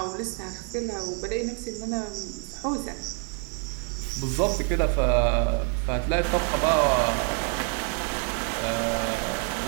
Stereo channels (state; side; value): quieter; left; 35.8 dB